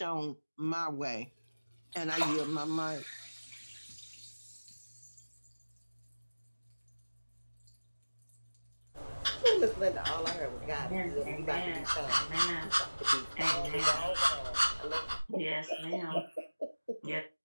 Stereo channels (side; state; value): both; inverted; correlation -1.00